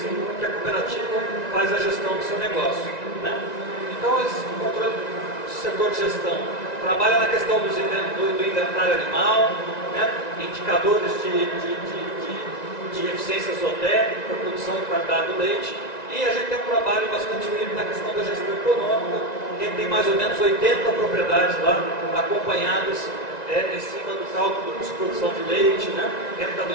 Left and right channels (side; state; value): right; late; 1.9 ms